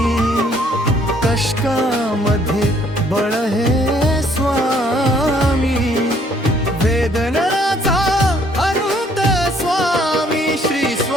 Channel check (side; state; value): both; normal; correlation 0.64